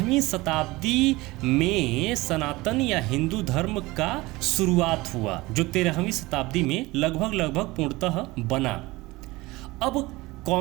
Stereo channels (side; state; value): left; quieter; 21.0 dB